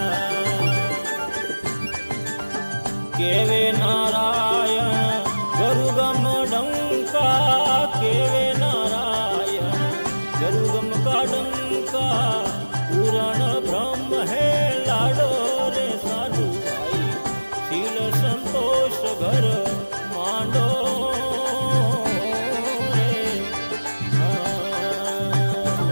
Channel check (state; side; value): inverted; both; correlation -1.00